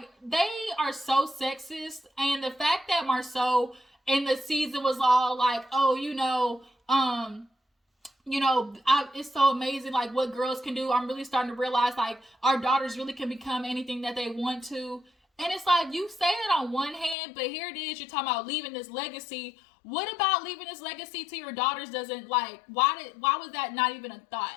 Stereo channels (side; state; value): right; drops out; at 17.2 s